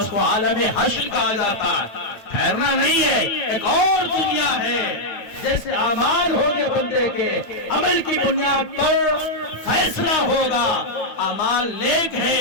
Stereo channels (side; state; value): right; late; 9.1 ms